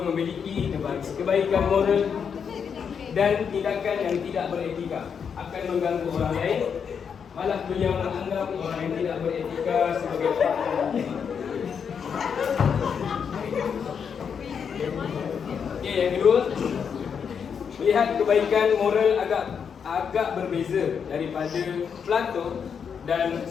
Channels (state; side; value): quieter; right; 6.9 dB